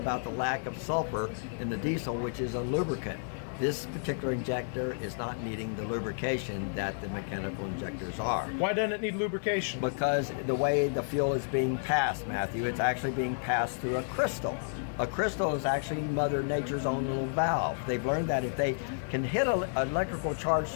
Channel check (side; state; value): right; silent; 57 dB below the other